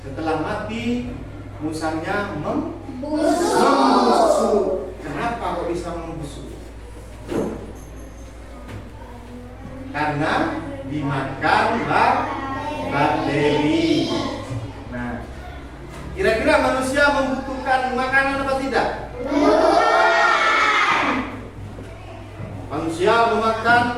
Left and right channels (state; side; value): identical; both; correlation 1.00